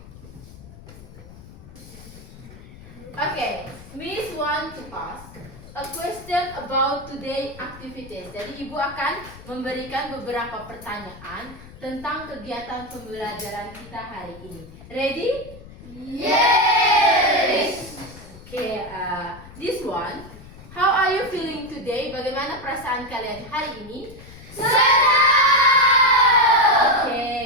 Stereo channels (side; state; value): left; noise; rumble, 18 dB below the sound